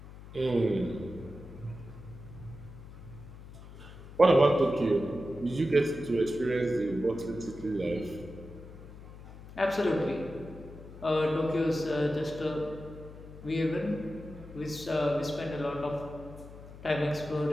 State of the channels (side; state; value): left; noise; hum, 16 dB below the sound